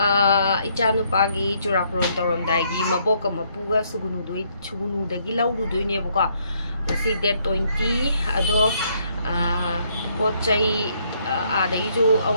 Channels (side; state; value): both; inverted; correlation -0.70